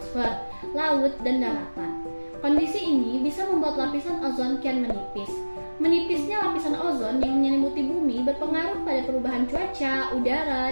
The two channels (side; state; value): both; inverted; correlation -1.00